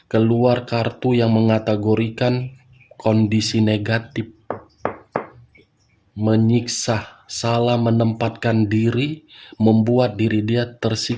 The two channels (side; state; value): both; identical; correlation 1.00